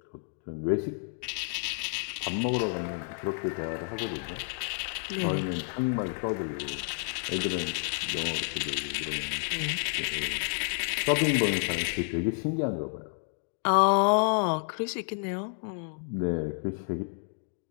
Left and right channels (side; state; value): right; silent; digital silence